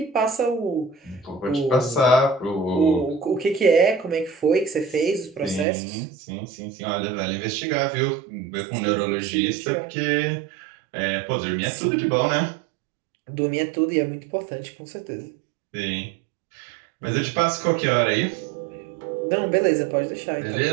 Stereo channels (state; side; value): drops out; left; at 5.7 s